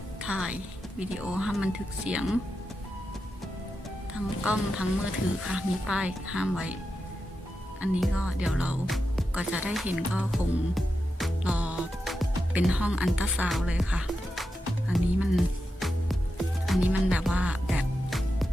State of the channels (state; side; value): normal; both; correlation 0.89